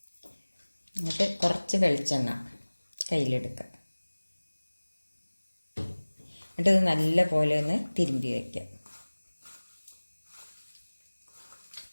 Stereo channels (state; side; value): inverted; both; correlation -1.00